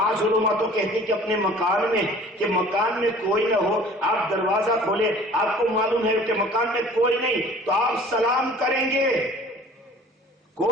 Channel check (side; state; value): both; normal; correlation 0.48